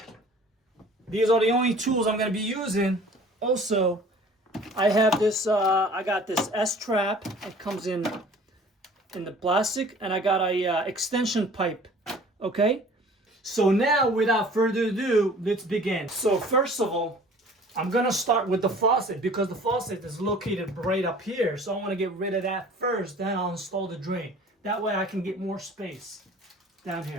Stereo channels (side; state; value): both; normal; correlation 0.48